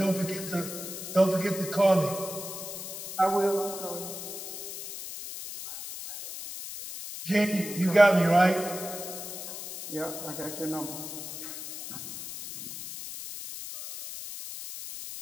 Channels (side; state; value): left; noise; hiss, 9 dB below the sound